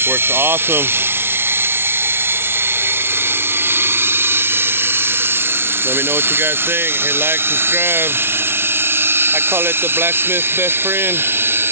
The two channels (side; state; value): left; late; 0.12 ms